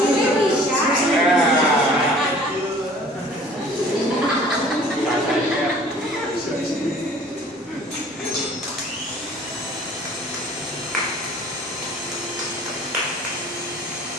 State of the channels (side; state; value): both; normal; correlation 0.50